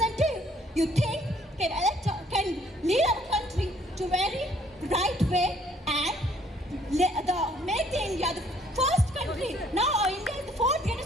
you think can lead our country to very right way and make the India the first country. Now India is the 4th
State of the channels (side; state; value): both; normal; correlation 0.63